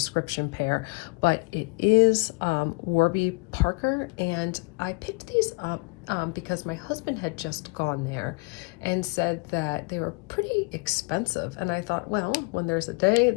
pair, but it is Warby Parker, and I picked these up because my husband had just gone there and said that they were pretty expensive. And I thought, well, when there's a day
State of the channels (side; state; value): right; quieter; 30.6 dB